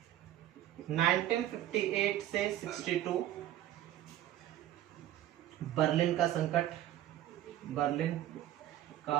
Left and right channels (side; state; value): left; quieter; 12.9 dB